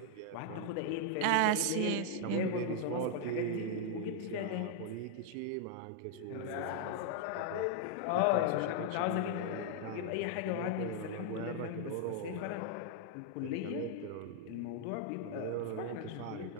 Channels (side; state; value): both; different; correlation 0.00